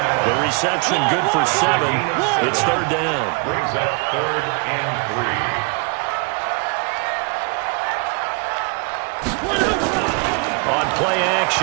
The reception good for 7. It's third down. Brings up 3rd and 3. On play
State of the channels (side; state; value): left; quieter; 34.1 dB